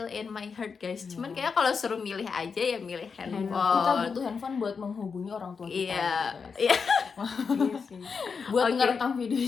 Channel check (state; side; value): quieter; right; 5.5 dB